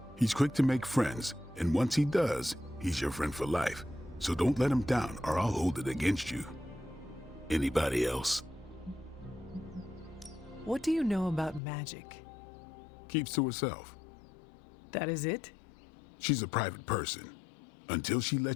He's quick to make friends, and once he does, he's your friend for life. So don't let him down or I'll hold it against you. Anybody else? What do you know about magic? Keeps to herself. That is it? She's a private person. Until she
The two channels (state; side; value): drops out; right; at 11.6 s